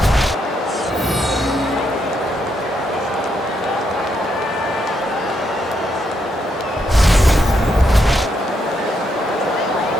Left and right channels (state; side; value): normal; both; correlation 0.78